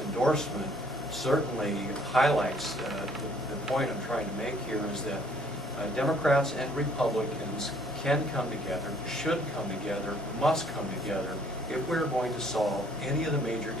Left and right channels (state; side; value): normal; both; correlation 0.61